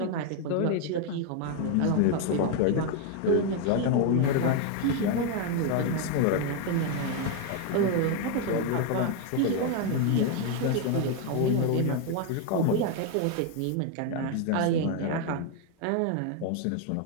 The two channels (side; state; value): both; different; correlation 0.01